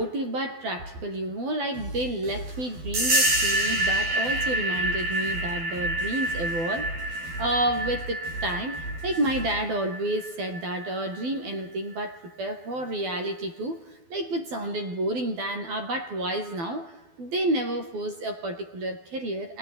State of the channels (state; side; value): late; left; 12 ms